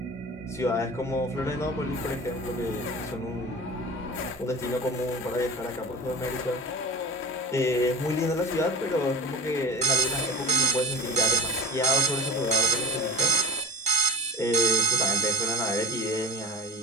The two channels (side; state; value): both; normal; correlation 0.34